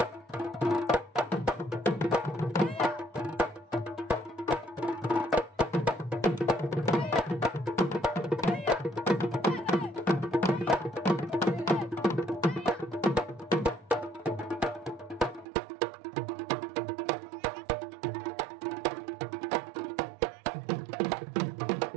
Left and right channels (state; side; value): drops out; left; at 15.5 s